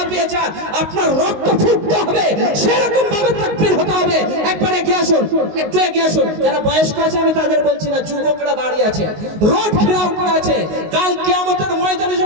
যান, আপনার রক্ত ফুটতে হবে, সেরকম ভাবে তাকবীর হতে হবে। একবার এগিয়ে আসুন, একটু এগিয়ে আসুন। যারা বয়স্ক আছে আমি তাদের বলছি না, যুবকরা দাঁড়িয়ে আছে, রোড ঘেরাও করে আছে। কাল কিয়ামতের ময়দানে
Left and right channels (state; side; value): late; left; 19 ms